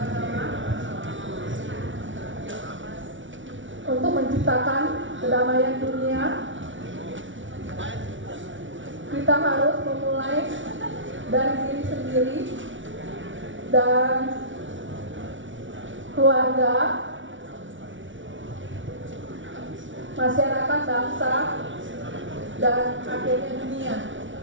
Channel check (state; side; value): late; left; 0.56 ms